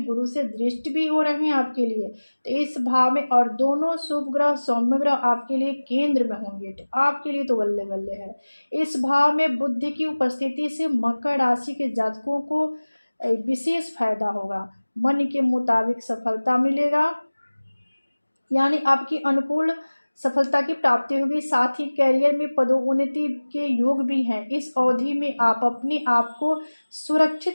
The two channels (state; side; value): inverted; both; correlation -1.00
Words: गुरु से दृष्टि भी हो रहे हैं आपके लिए। तो इस भाव में और दोनों शुभ ग्रह सौम्य ग्रह आपके लिए केंद्र में होंगे, तो आपके लिए तो बल्ले बल्ले है। इस भाव में बुध की उपस्थिति से मकर राशि के जातकों को विशेष फायदा होगा, मन के मुताबिक सफलता मिलेगा, यानी आपकी अनुकूल सफलता की प्राप्ति होगी। साथ ही करियर में पदोन्नति के योग भी हैं। इस अवधि में आप अपने आप को